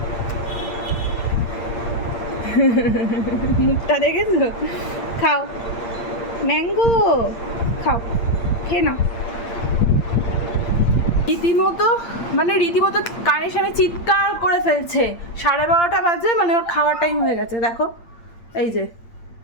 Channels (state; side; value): late; right; 8.7 ms